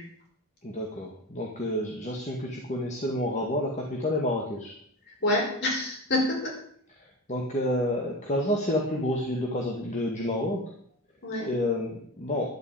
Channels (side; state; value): both; normal; correlation 0.28